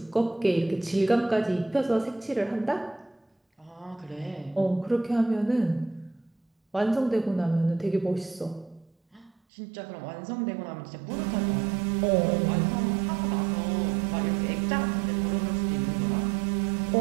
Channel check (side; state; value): left; drops out; at 9.3 s